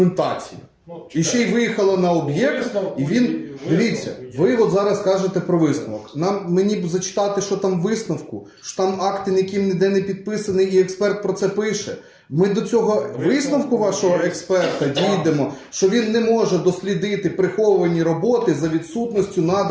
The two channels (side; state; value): both; identical; correlation 1.00